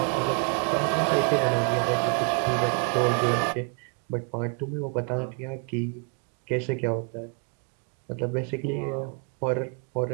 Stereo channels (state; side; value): quieter; left; 39.5 dB